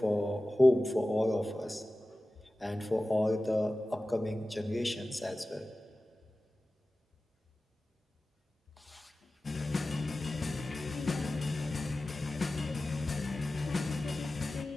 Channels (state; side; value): normal; both; correlation 0.96